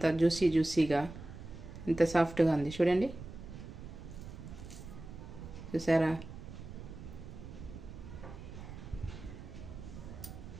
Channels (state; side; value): noise; right; rumble, 12 dB below the sound